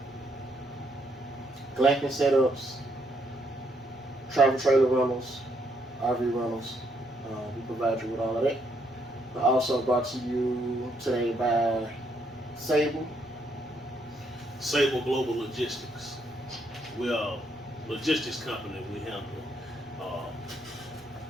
glamping setups, travel trailer rentals, RV rentals. We provide you with all of that. We're also brought to you today by Sable. Sable Global Logistics. We are a logistics company. We handle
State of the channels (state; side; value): normal; both; correlation 0.73